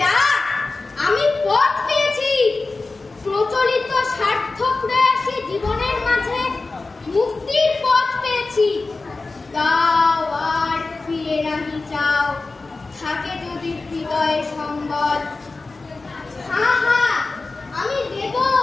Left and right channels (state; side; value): quieter; right; 3.6 dB